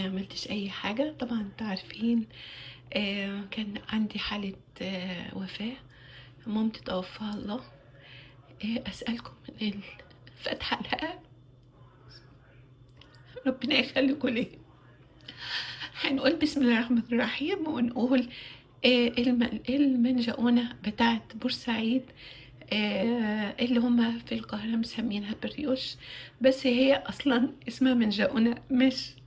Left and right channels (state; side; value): identical; both; correlation 1.00